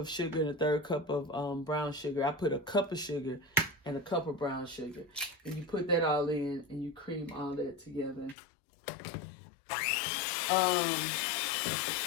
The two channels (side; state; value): right; drops out; at 8.3 s